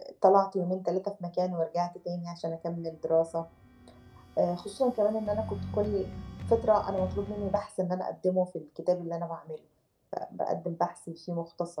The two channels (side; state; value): both; identical; correlation 1.00